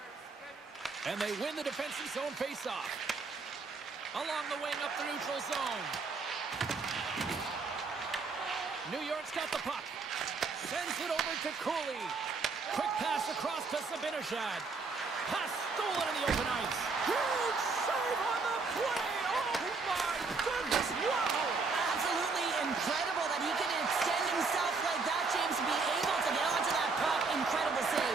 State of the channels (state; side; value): quieter; left; 4.3 dB